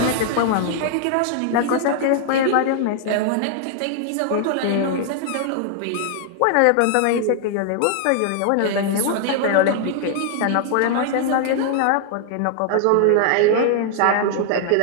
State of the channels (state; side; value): different; both; correlation -0.01